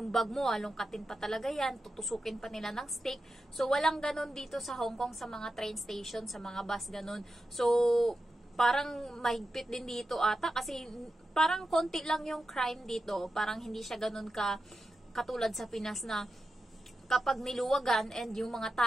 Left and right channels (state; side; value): normal; both; correlation 0.90